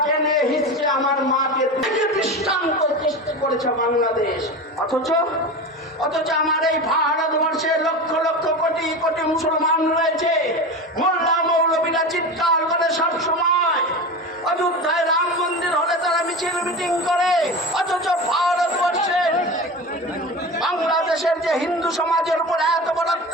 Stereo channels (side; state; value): both; normal; correlation 0.27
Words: কেনে হিসছে আমার মাকে দৃষ্টান্ত সৃষ্টি করেছে বাংলাদেশ। অথচ আমার এই ভারতবর্ষে লক্ষ লক্ষ কোটি কোটি মুসলমান রয়েছে, মোল্লা মৌলবীরা চিৎকার করে সব সময়, অযোধ্যায় রাম মন্দির হলে তারা মিছিল মিটিং করে, অথচ ভারতবর্ষের বাংলাদেশের যে হিন্দু সমাজের উপর এত বড়